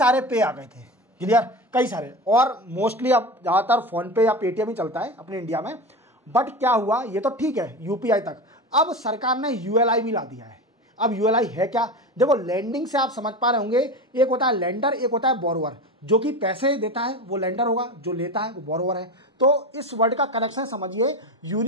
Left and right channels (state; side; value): normal; both; correlation 0.25